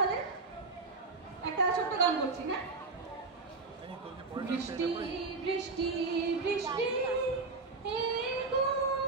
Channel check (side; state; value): left; quieter; 3.9 dB